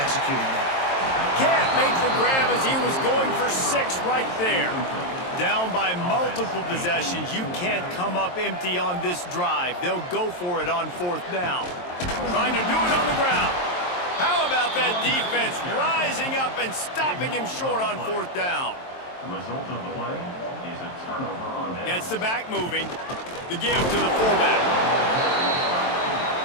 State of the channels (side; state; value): right; late; 23 ms